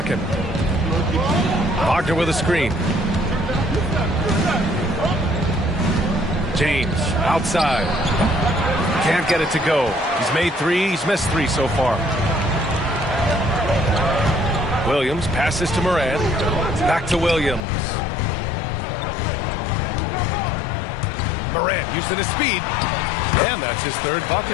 Wagner with a screen. James outside. Can't get it to go. He's made 3. He's missed 3 so far. Williams passes to Morant. Back to Williams. Morant using his speed. And that's his 3rd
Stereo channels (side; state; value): right; drops out; at 17.6 s